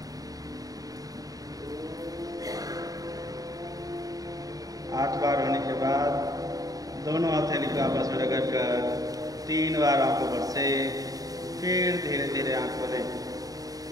आठ बार होने के बाद दोनों हथेली को आपस में रगड़ कर 3 बार आंखों पर से फिर धीरे धीरे आंख खोलें।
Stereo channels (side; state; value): left; late; 0.18 ms